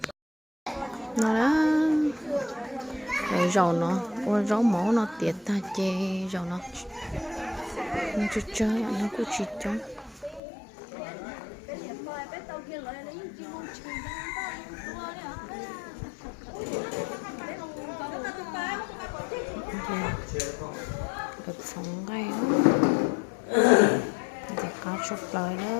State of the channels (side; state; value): right; drops out; at 10.4 s